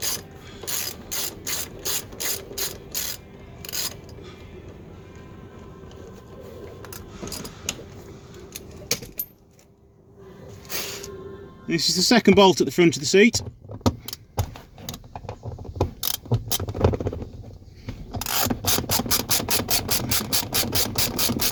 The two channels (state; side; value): identical; both; correlation 1.00